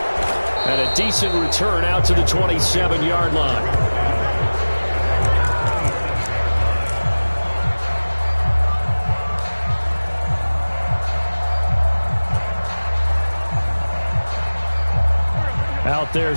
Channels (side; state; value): both; inverted; correlation -1.00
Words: And a decent return out to the 27-yard line. Out there